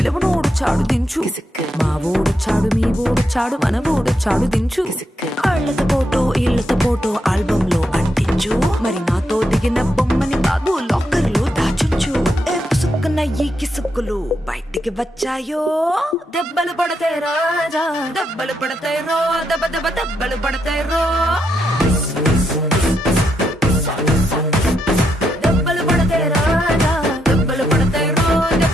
దించు మా ఓడొచ్చాడు మీ ఓడొచ్చాడు మన ఓడొచ్చాడు దించు ఇళ్ళతో ఫోటో ఆల్బమ్ లో అంటించు మరి నాతో దిగిన బొమ్మని బాబు లాకర్ లో దాచుంచు సుక్కున ఈ కిసుక్కులు బయటికి వచ్చాయో దెబ్బలు పడతాయి రాజా దెబ్బలు పడతాయి రో దెబ్బ దెబ్బ దెబ్బలు పడతాయి రో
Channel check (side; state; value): both; normal; correlation 0.80